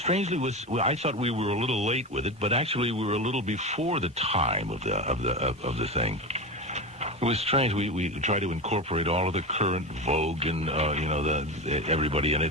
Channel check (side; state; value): both; normal; correlation 0.22